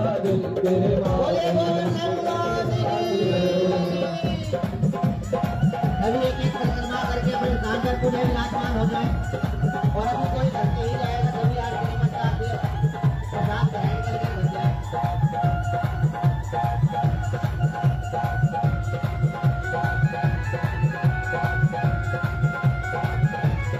तेरे माथे अभी एक एक परिक्रमा करके अपने स्थान पर पूरे विराजमान हो जाए और अभी कोई करके ही जाएगा तभी आरती मत आती प्रसाद ग्रहण करके बन जाए।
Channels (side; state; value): both; identical; correlation 1.00